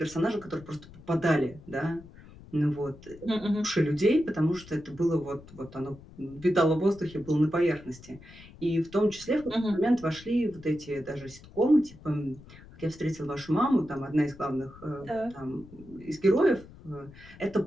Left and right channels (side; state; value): left; noise; rumble, 20 dB below the sound